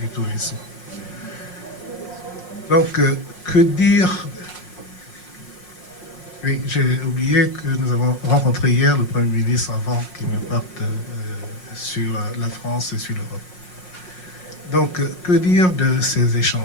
Tourisme. Donc, que dire? Oui, j'ai oublié que nous avons rencontré hier le Premier ministre avant qu'il ne parte sur la France et sur l'Europe. Donc, que dire de ces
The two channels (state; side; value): late; right; 5.5 ms